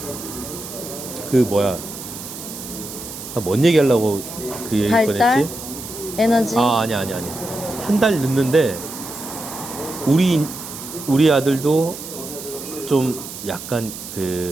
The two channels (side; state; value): right; noise; hiss, 11 dB below the sound